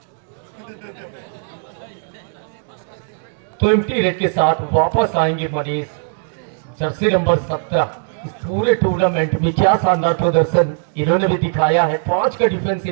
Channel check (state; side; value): silent; left; digital silence